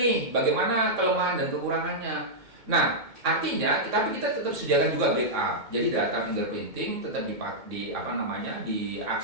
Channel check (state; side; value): late; left; 2.2 ms